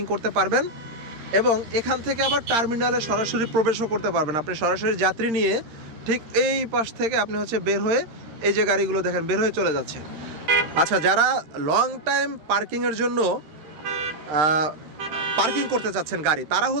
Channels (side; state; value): left; late; 13 ms